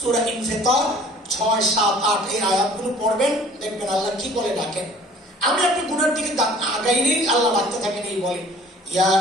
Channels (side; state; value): both; normal; correlation 0.51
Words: ইনফিতার 6, 7, 8 এই আয়াতগুলো পড়বেন, দেখবেন আল্লাহ কি বলে ডাকেন। আমি আপনি গুনার দিকে আগাইলেই আল্লাহ ডাকতে থাকেন, এই বলে, ইয়া